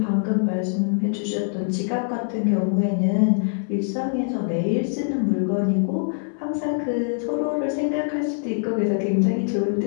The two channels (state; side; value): silent; right; digital silence